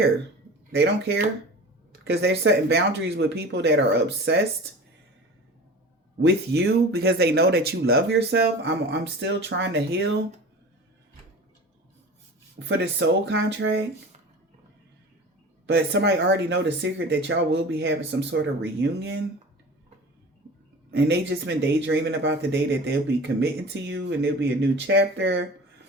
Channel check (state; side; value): normal; both; correlation 0.37